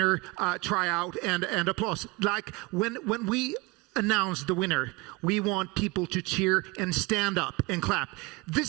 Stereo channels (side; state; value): left; quieter; 24.6 dB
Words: tryout and applause. Like when we announce the winner, we want people to cheer and stand up and clap.